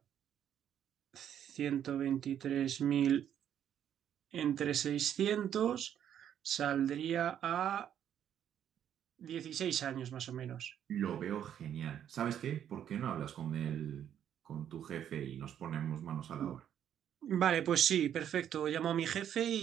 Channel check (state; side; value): quieter; left; 9.8 dB